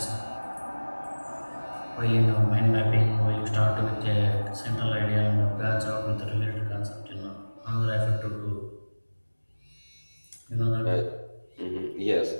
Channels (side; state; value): both; inverted; correlation -1.00